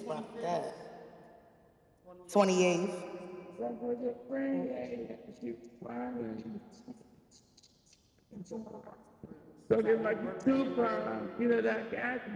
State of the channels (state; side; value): identical; both; correlation 1.00